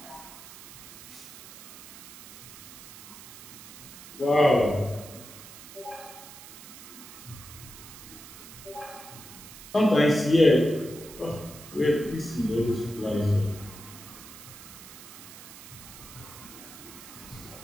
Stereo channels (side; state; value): right; noise; hiss, 16 dB below the sound